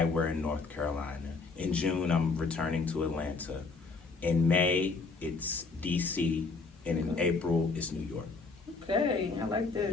we're in North Carolina. In June, I'm returning to Atlanta. In May, it's DC, and in April, it's New York. Okay, I like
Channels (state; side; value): quieter; right; 4.2 dB